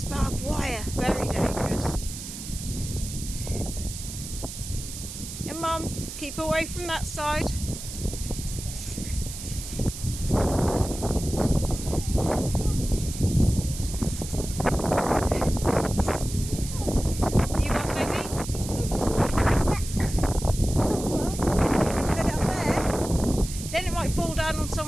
barbed wire. Very dangerous. And Mum, keep away from that side. You want, baby? Put it up there. Then it might fall down on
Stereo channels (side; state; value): right; noise; hiss, 10 dB below the sound